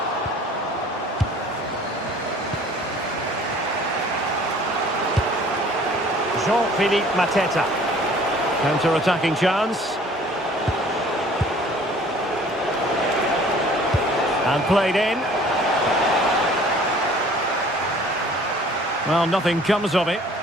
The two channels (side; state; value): both; normal; correlation 0.52